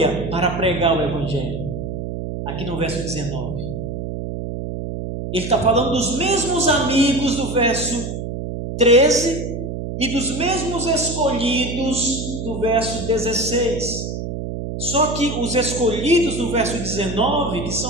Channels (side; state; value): right; noise; hum, 5 dB below the sound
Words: para pregar o Evangelho. Aqui no verso 19. Ele está falando dos mesmos amigos do verso 13 e dos mesmos escolhidos do verso 16. Só que os escolhidos do verso 19, que